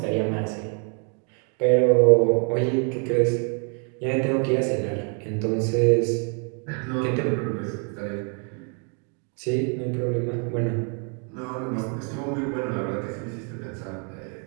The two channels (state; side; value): quieter; left; 39.7 dB